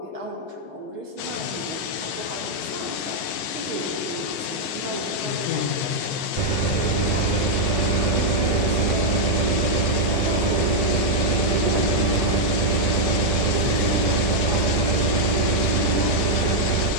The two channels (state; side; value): late; right; 13 ms